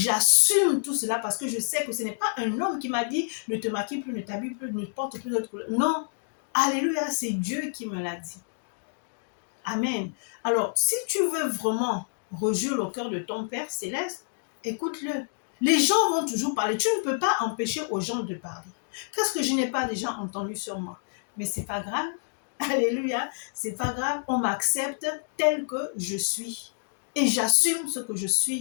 tout cela parce que je sais que ce n'est pas un homme qui m'a dit, ne te maquille plus, ne t'habille plus, ne porte plus d'autres couleurs. Non. Alléluia, c'est Dieu qui me l'a dit. Amen. Alors, si tu veux vraiment rejurer le cœur de ton Père céleste, écoute-le. Les gens vont toujours parler. Tu ne peux pas empêcher aux gens de parler. Qu'est-ce que je n'ai pas déjà entendu sur moi? Mais c'est pas grave. Alléluia. C'est pas grave. On m'accepte tel que je suis. Et j'assume ce que je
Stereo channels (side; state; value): right; silent; digital silence